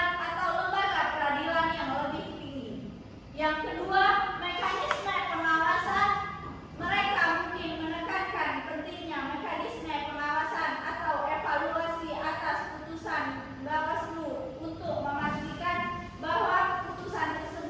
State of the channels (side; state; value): both; identical; correlation 1.00